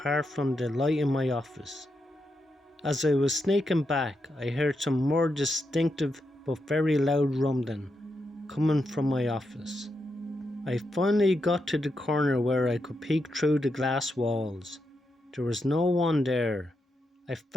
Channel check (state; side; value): normal; both; correlation 0.84